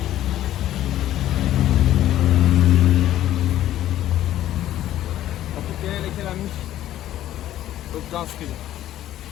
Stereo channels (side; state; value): right; quieter; 12.9 dB